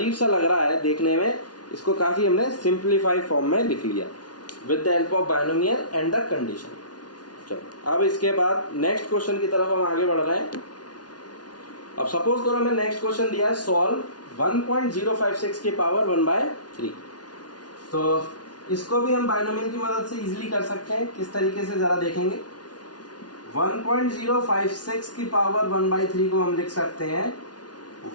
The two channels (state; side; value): late; right; 0.69 ms